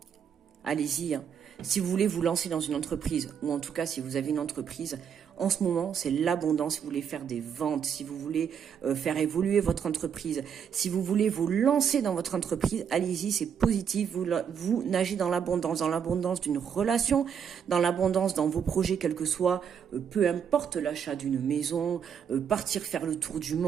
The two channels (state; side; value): quieter; left; 7.6 dB